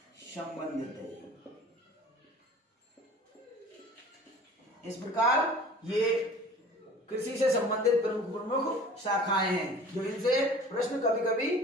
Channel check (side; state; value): both; normal; correlation 0.44